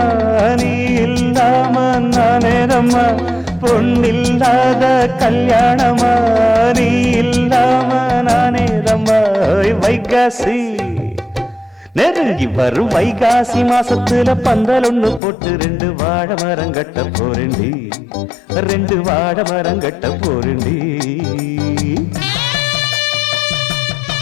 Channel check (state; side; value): drops out; right; at 15.2 s